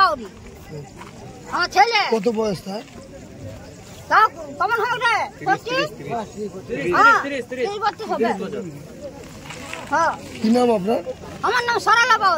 আমার ছেলে। কত বয়স তার? তাও কেমন হবে রে? 30 বছর হবে। হ্যাঁ। কি নাম আপনার? আমার নাম সরলা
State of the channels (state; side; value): identical; both; correlation 1.00